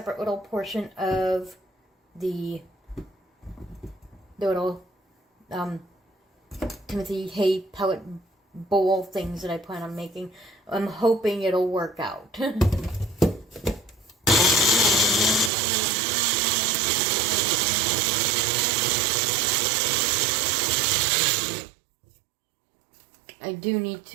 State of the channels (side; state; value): left; drops out; at 15.5 s